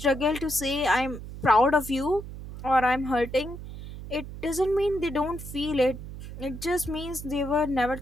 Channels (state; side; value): noise; right; hum, 11 dB below the sound